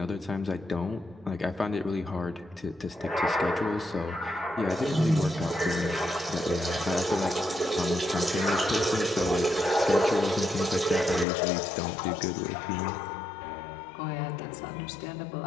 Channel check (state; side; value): drops out; right; at 11.2 s